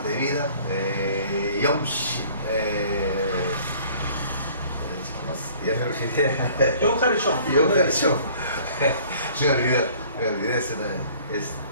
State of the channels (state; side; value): inverted; both; correlation -0.53